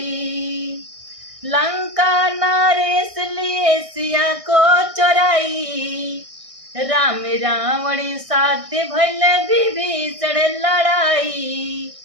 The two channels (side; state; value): left; late; 1.6 ms